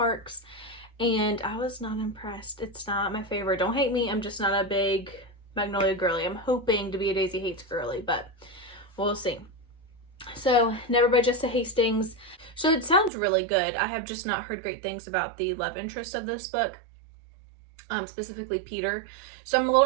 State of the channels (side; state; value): left; drops out; at 13.1 s